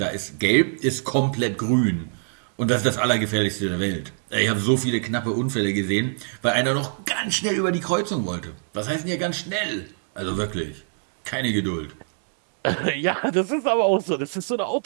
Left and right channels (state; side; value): silent; left; digital silence